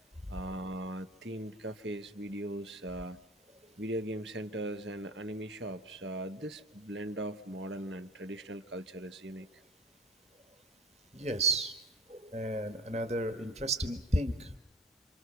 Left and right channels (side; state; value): both; normal; correlation 0.41